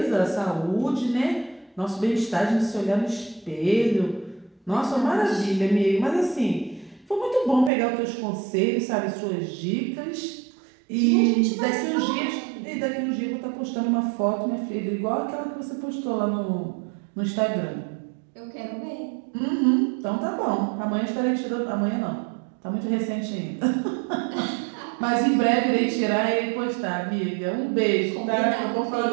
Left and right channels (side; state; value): left; drops out; at 7.7 s